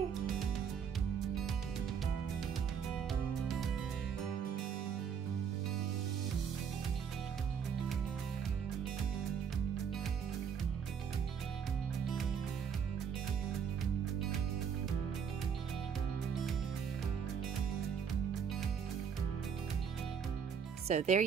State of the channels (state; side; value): quieter; left; 7.2 dB